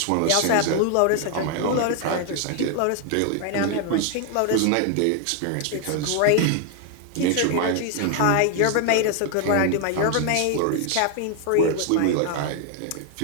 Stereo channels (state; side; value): different; both; correlation 0.00